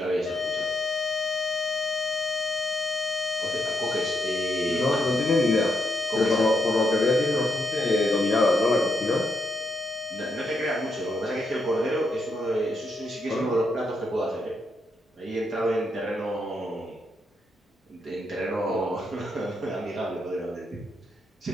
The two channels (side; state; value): both; normal; correlation 0.79